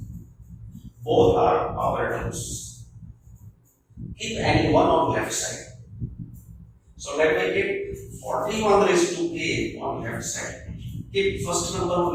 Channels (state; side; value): identical; both; correlation 1.00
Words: Both are power terms. Keep any one on left side. So let me keep 41 raised to k on left side. Keep first number on